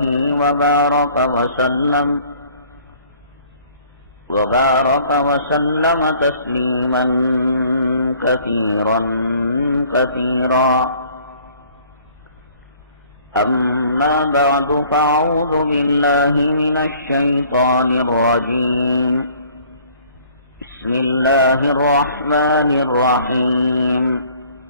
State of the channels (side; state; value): both; inverted; correlation -0.56